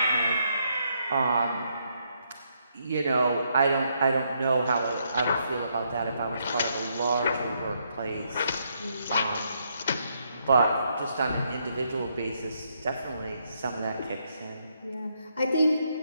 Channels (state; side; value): inverted; both; correlation -0.76